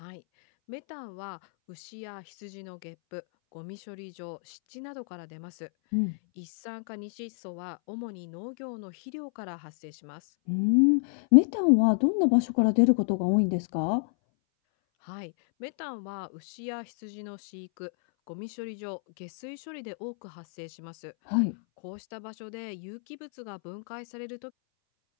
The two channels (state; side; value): silent; right; 58 dB below the other